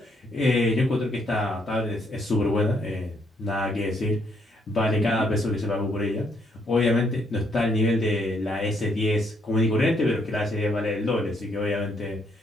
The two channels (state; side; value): normal; both; correlation 0.72